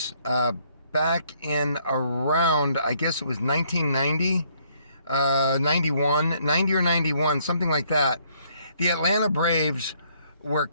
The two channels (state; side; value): inverted; both; correlation -0.68